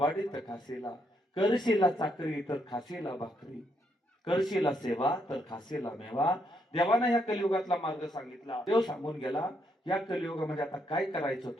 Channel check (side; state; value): both; normal; correlation 0.76